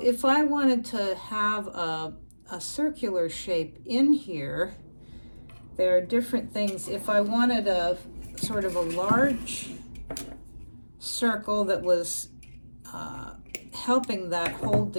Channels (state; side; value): inverted; both; correlation -1.00